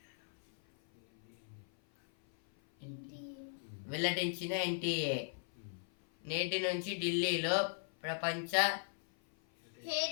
వెల్లడించిన ఎన్టీఏ నేటి నుంచి ఢిల్లీలో ప్రపంచ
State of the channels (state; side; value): silent; right; 53 dB below the other